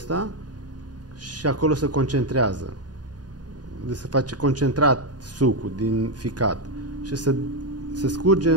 și acolo se concentrează. Deci se face concentrat sucul din ficat și se scurge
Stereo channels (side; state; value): left; late; 0.69 ms